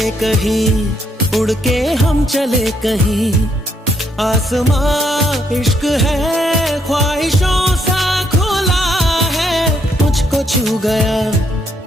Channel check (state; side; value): normal; both; correlation 0.74